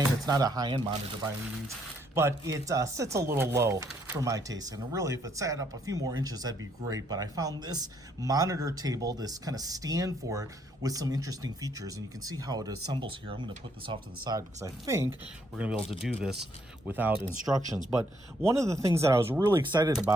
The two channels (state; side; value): normal; both; correlation 0.71